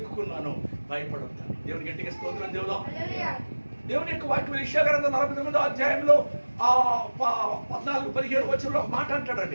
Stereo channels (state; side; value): inverted; both; correlation -1.00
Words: భయపడొద్దని. దేవుని గట్టిగా స్తోత్రం చెబుదాం. దేవుని యొక్క వాక్యం యెషయా గ్రంథం 49వ అధ్యాయంలో 14-15 వచనంలో ఒక మాట